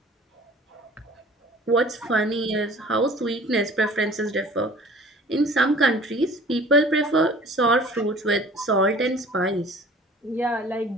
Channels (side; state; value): both; normal; correlation 0.47